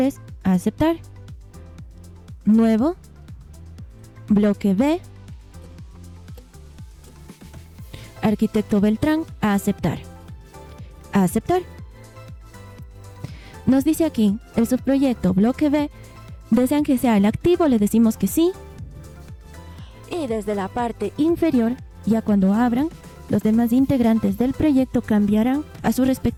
a aceptar, nuevo, bloque B, Arquitecto Beltrán, a aceptar, a aceptar. Nos dice aquí, el subproyecto bloque B, desean que sea el activo, le decimos que sí. Y desde la parte inferior, ya cuando abran, los demás integrantes del proyecto cambiarán a su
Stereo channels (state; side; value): identical; both; correlation 1.00